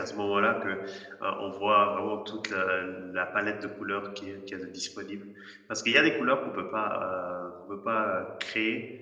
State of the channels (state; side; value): identical; both; correlation 1.00